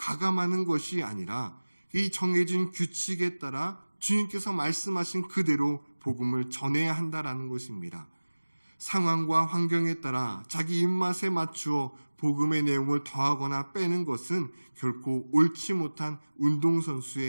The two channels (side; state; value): both; inverted; correlation -1.00